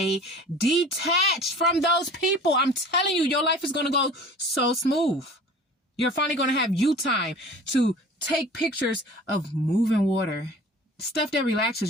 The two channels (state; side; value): normal; both; correlation 0.43